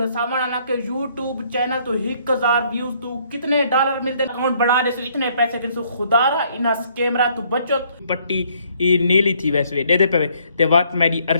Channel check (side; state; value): both; inverted; correlation -0.65